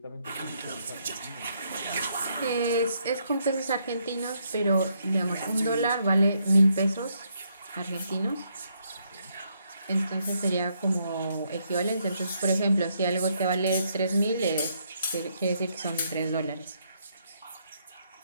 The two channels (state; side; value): inverted; both; correlation -0.74